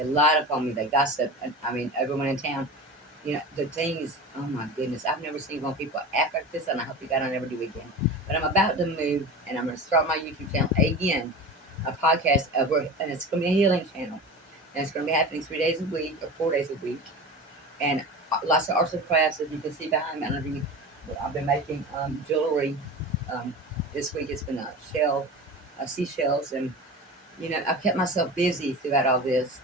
lied upon me. They gossip. I mean, everyone in town. The thing is, oh my goodness, I've never seen one people act like this, and I hope to God I never do again. But I'm about to move, and I'm going to start my YouTube channel again, a podcast, and it's going to be a healing channel. And it's going to be happening 3 days a week or 4 days a week. And lots of arts and crafts, as you can see behind me. I've been making jewelry. Um, this week it's been seashells, and I've kept myself busy throughout all this.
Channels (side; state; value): both; normal; correlation 0.32